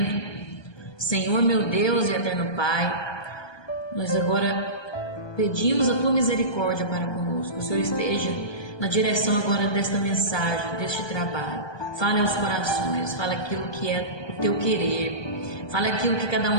Senhor, meu Deus e eterno Pai, nós agora pedimos a Tua misericórdia para conosco. O Senhor esteja na direção agora desta mensagem, deste trabalho. Fale aos corações, fale aquilo que é o Teu querer, fale aquilo que cada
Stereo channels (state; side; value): late; right; 1.2 ms